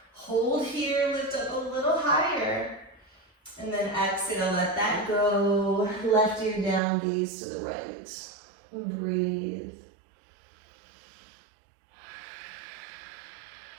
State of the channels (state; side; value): drops out; left; at 6.8 s